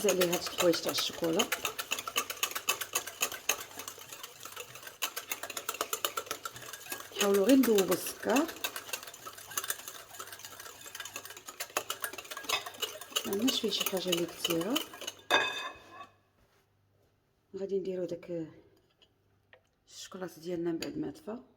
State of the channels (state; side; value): identical; both; correlation 1.00